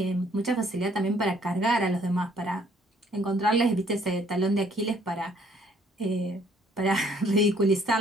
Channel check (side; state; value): both; normal; correlation 0.63